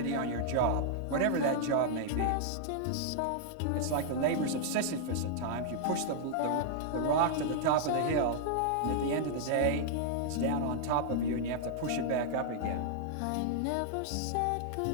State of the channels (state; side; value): different; both; correlation -0.01